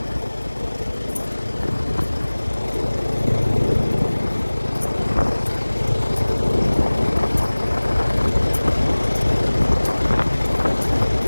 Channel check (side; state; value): both; inverted; correlation -1.00